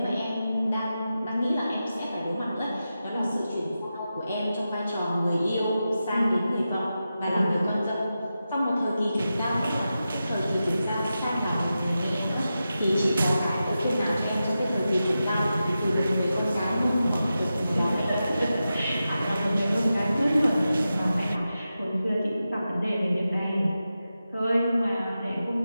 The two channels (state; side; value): inverted; both; correlation -0.91